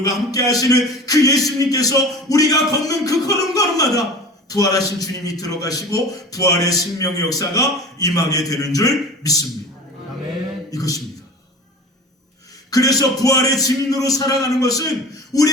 함께 하시는 그 예수님께서 우리가 걷는 그 걸음걸음마다 부활하신 주님이 들어가시고 부활의 생명의 역사가 임하게 되는 줄 믿습니다. 아멘. 이것입니다. 그래서 부활의 증인으로 살아가는 것은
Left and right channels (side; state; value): both; normal; correlation 0.38